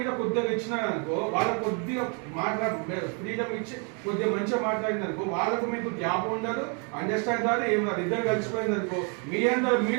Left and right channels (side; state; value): left; quieter; 37.0 dB